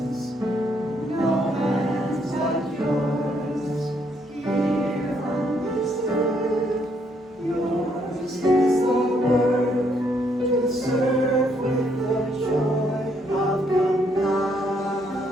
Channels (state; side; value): normal; both; correlation 0.72